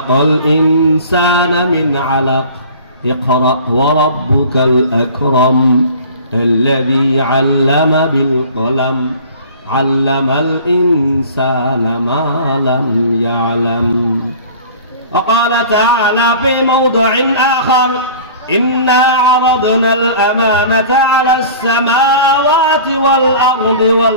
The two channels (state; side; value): inverted; both; correlation -0.43